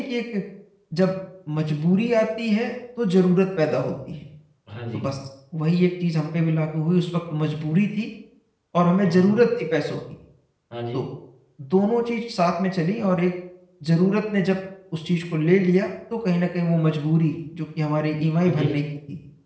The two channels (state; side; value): identical; both; correlation 1.00